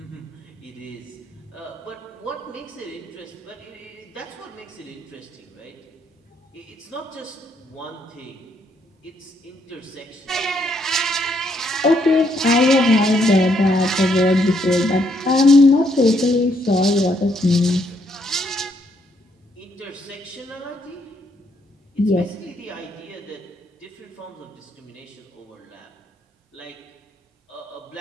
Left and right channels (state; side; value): normal; both; correlation 0.73